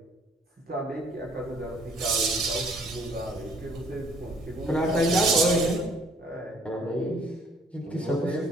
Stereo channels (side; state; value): both; normal; correlation 0.60